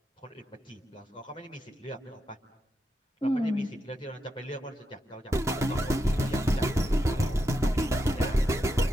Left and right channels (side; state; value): both; normal; correlation 0.85